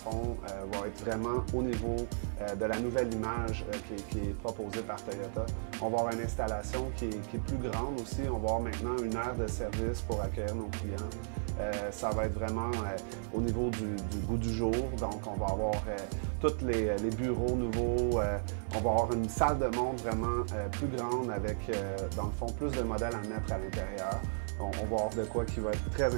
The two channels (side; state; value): left; silent; digital silence